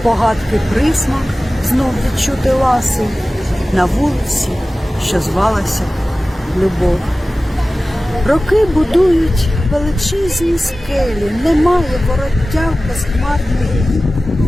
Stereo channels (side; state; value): both; normal; correlation 0.96